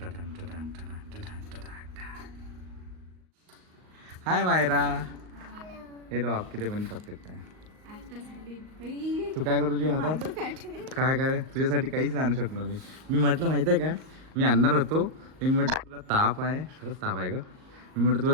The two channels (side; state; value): left; late; 38 ms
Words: हाय मायरा. हेलो आप किती पण चॉकलेट काय तू काय करू तुझी हातात काय काय तुझ्यासाठी काहीच नाही आणू शकलो मी म्हटलं माहिती आहे का मी आणणार होतो मी म्हटलं तुला ताप आहे खरंच ताप आहे ग मी म्हटलं तुला